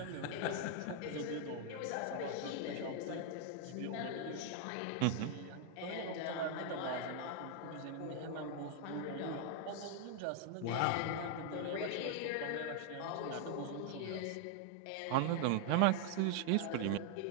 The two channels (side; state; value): both; different; correlation 0.00